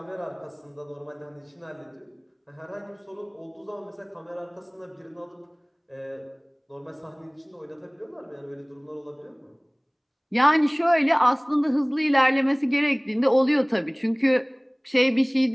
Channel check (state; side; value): identical; both; correlation 1.00